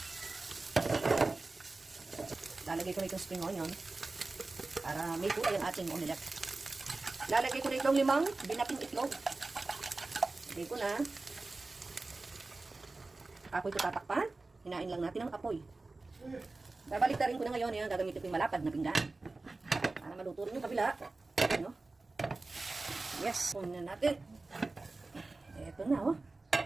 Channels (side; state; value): left; quieter; 3.4 dB